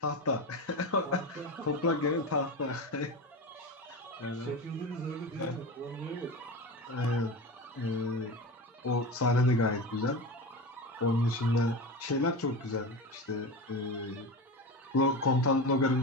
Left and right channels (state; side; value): normal; both; correlation 0.25